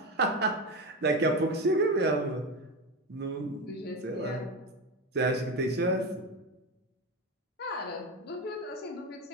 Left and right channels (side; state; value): both; normal; correlation 0.19